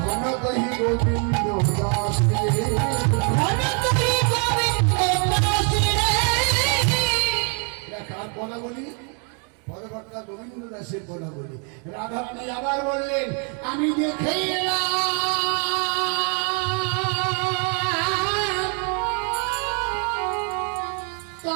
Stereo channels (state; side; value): quieter; left; 39.5 dB